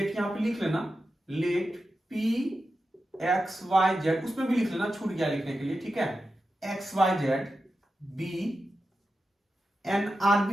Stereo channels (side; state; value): both; normal; correlation 0.90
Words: यहां पे लिख लेना, let p x y z, उसमें भी लिख लेना, छूट गया लिखने के लिए, ठीक है, x y z be an